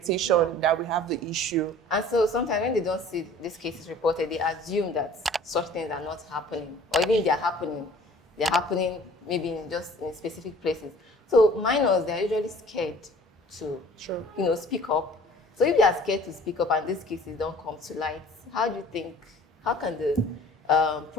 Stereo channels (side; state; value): both; normal; correlation 0.49